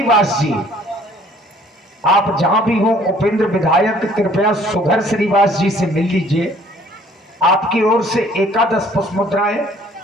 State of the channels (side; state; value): both; normal; correlation 0.57